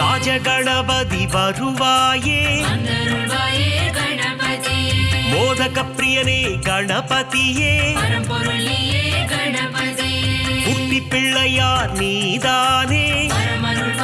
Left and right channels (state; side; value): identical; both; correlation 1.00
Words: வருவாயே, மோதக பிரியனே கணபதியே, குட்டி பிள்ளையார் நீதானே,